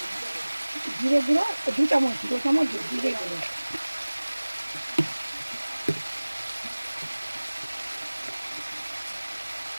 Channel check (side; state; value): both; inverted; correlation -1.00